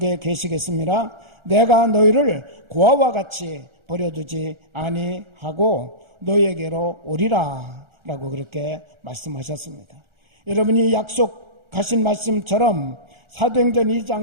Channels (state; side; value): late; left; 1.4 ms